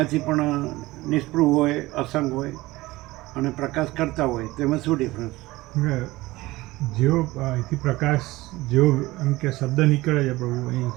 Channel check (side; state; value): left; quieter; 19.3 dB